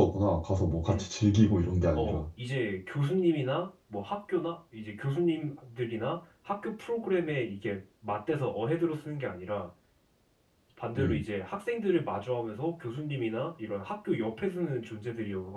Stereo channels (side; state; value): both; identical; correlation 1.00